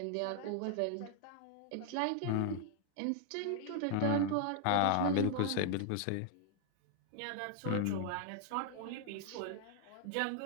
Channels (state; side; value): different; both; correlation 0.00